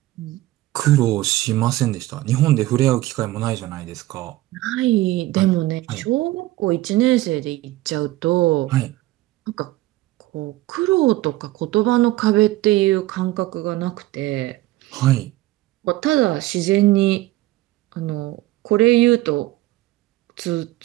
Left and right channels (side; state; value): left; quieter; 17.1 dB